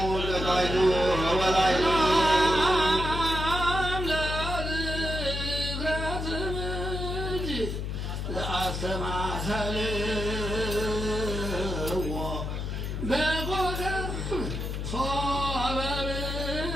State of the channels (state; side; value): noise; left; hum, 3 dB below the sound